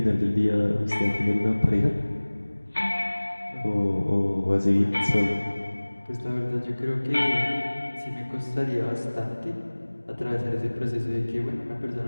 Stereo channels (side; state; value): both; inverted; correlation -1.00